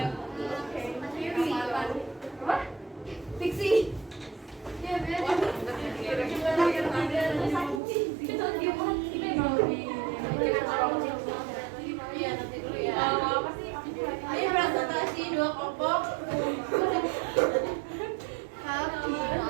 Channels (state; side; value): drops out; left; at 7.8 s